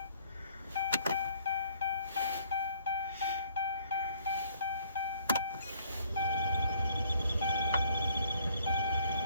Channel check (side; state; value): both; inverted; correlation -0.62